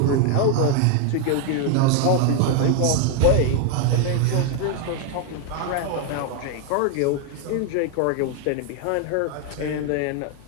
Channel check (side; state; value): both; different; correlation 0.01